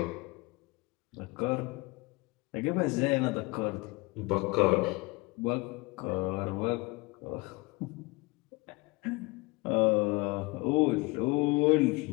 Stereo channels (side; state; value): right; quieter; 24.7 dB